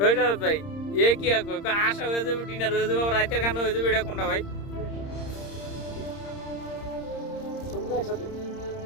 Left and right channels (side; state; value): right; late; 30 ms